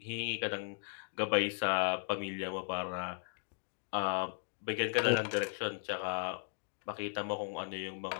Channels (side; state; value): right; silent; digital silence